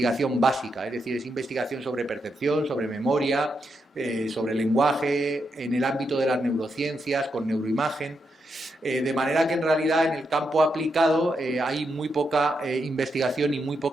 básica, es decir, es investigación sobre percepción, sobre memoria, sobre lenguaje, en el ámbito de las neurociencias, con neuroimagen. De manera que en realidad en el campo aplicado hay muy poca investigación y muy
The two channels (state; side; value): normal; both; correlation 0.83